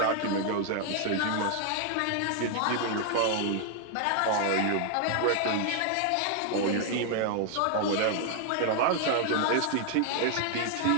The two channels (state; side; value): different; both; correlation 0.00